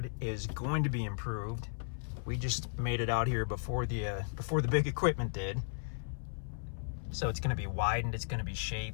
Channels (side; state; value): right; silent; 54 dB below the other